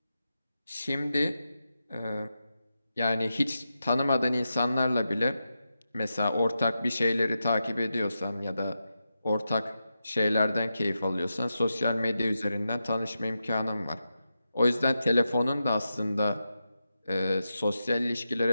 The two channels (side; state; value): both; inverted; correlation -0.89